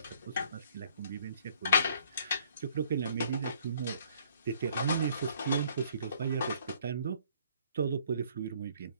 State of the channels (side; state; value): both; inverted; correlation -0.61